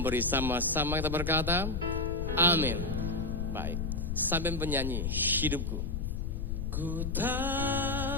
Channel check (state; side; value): noise; left; rumble, 2 dB below the sound